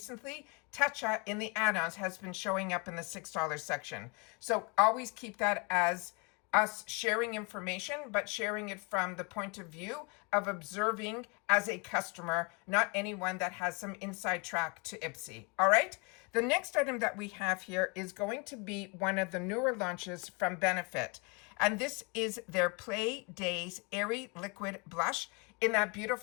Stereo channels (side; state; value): right; quieter; 31.6 dB